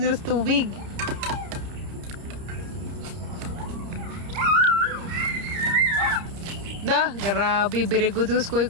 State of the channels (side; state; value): left; late; 30 ms